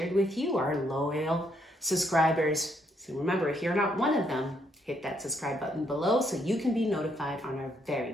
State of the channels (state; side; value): normal; both; correlation 0.73